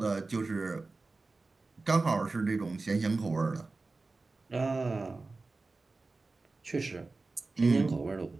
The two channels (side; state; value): left; quieter; 3.6 dB